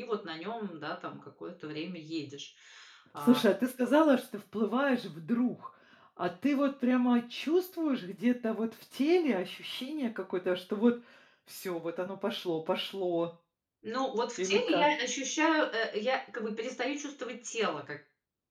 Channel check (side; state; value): both; identical; correlation 1.00